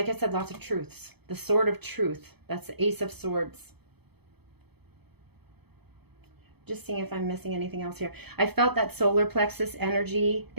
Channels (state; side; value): late; left; 0.98 ms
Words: I said, lots of truths. The Sword of Truth. That's the Ace of Swords. Just seeing if I'm missing anything else here. I felt that solar plexus energy